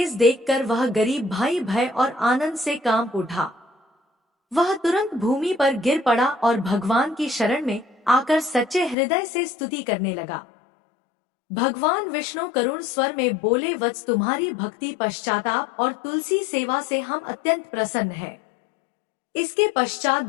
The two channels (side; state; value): right; drops out; at 9.0 s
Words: देखकर वह गरीब भाई भय और आनंद से कांप उठा। वह तुरंत भूमि पर गिर पड़ा और भगवान की शरण में आकर सच्चे हृदय से स्तुति करने लगा। भगवान विष्णु करुण स्वर में बोले, वत्स, तुम्हारी भक्ति, पश्चाताप और तुलसी सेवा से हम अत्यंत प्रसन्न हैं। इसके पश्चात